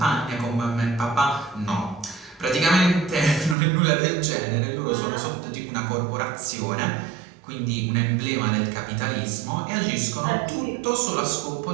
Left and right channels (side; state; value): left; drops out; at 3.6 s